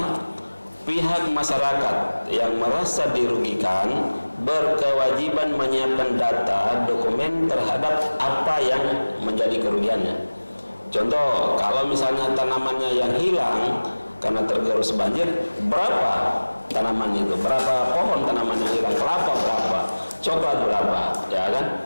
pihak masyarakat yang merasa dirugikan berkewajiban menyiapkan data dokumen terhadap apa yang menjadi kerugiannya. Contoh, kalau misalnya tanamannya yang hilang karena tergerus banjir, berapa tanaman itu? Berapa pohon tanaman yang hilang? Kelapa berapa? Coklat berapa? Ya kan?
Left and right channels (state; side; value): inverted; both; correlation -1.00